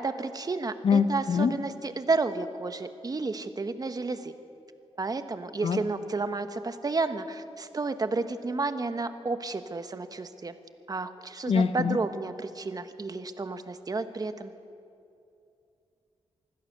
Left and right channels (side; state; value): both; normal; correlation 0.71